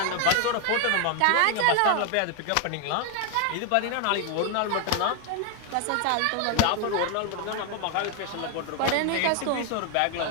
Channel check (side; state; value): both; different; correlation 0.01